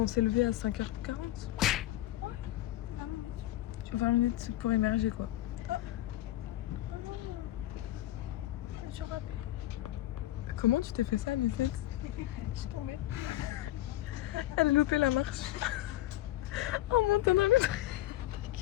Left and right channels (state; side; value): quieter; right; 15.3 dB